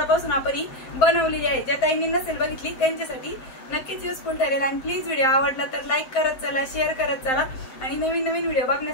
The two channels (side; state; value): right; late; 7.7 ms